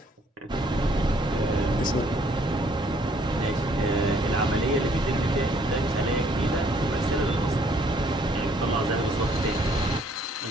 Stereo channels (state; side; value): normal; both; correlation 0.64